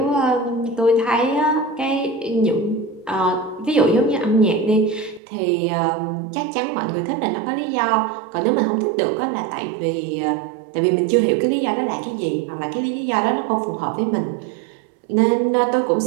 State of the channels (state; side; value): drops out; left; at 5.2 s